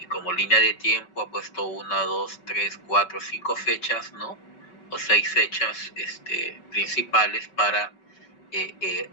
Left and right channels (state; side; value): late; right; 5.3 ms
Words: como línea de tiempo, ha puesto 1, 2, 3, 4, 5 fechas, ¿no? O 6 fechas principales para